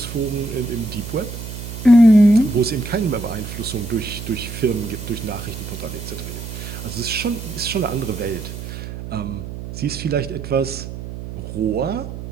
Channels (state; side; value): noise; right; hum, 9 dB below the sound